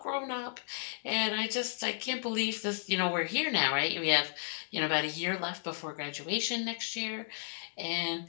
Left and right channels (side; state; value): right; silent; digital silence